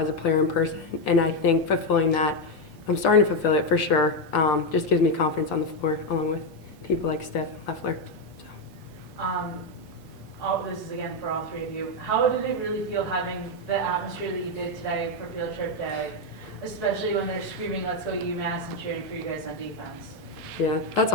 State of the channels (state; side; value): normal; both; correlation 0.05